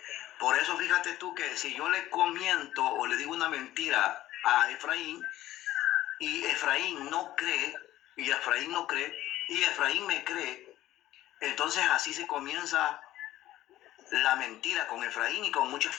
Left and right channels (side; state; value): right; quieter; 14.6 dB